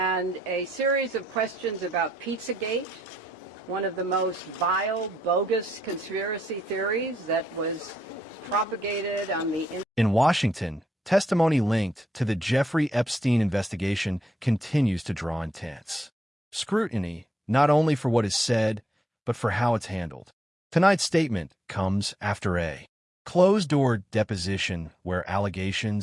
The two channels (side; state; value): both; normal; correlation 0.79